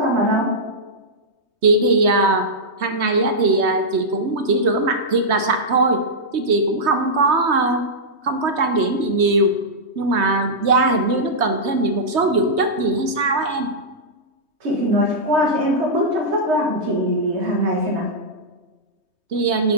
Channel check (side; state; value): left; late; 3.2 ms